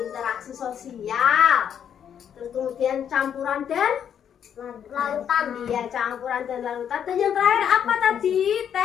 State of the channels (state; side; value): quieter; right; 8.7 dB